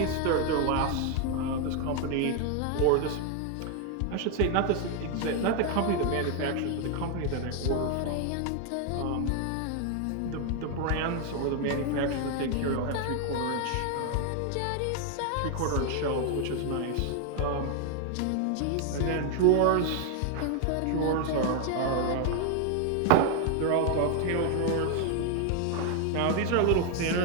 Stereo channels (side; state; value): both; different; correlation 0.01